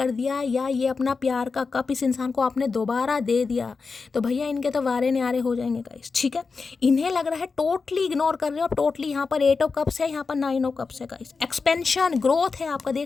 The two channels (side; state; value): right; quieter; 4.6 dB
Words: दिया, या ये अपना प्यार का कप इस इंसान को आपने दोबारा दे दिया, तो भैया इनके तो वारे न्यारे हो जाएंगे गाइस, ठीक है। इन्हें लग रहा है टोटली इग्नोर कर रहे हो टोटली। यहाँ पर 8 ऑफ कप्स है, यहाँ पर 9 ऑफ कप्स है गाइस। एक्सपेंशन ग्रोथ है आपका।